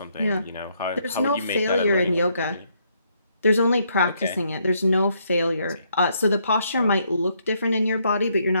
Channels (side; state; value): both; inverted; correlation -0.73